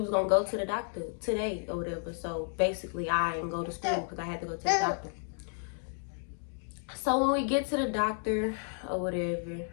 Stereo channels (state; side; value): silent; right; 55 dB below the other